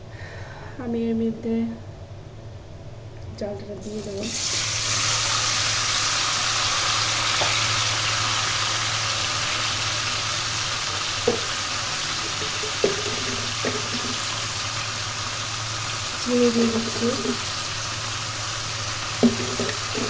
আমি এর মধ্যে চালটা দিয়ে দেবো। চিনি দিয়ে দিচ্ছি।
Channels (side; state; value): both; identical; correlation 1.00